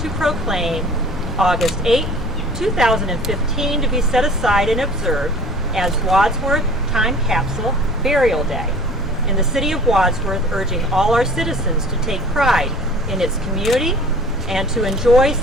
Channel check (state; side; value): noise; left; rumble, 11 dB below the sound